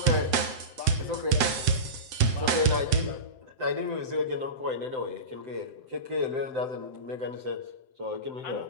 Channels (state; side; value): late; left; 7.8 ms